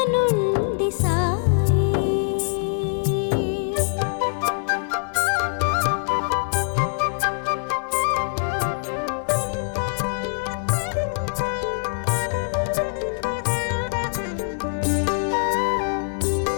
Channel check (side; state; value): right; silent; 63 dB below the other